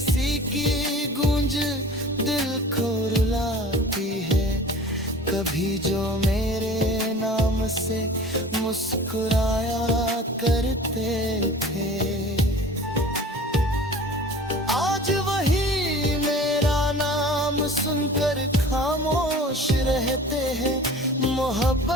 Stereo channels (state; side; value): normal; both; correlation 0.42